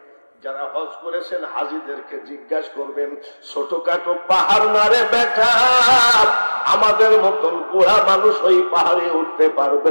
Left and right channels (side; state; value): both; inverted; correlation -1.00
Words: যারা হজ করেছেন হাজিদেরকে জিজ্ঞাসা করবেন, ছোটখাটো পাহাড় না রে বেটা, আমাদের মতন বুড়া মানুষ ওই পাহাড়ে উঠতে পারবে